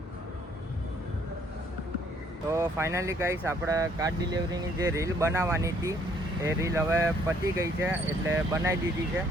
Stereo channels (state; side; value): normal; both; correlation 0.64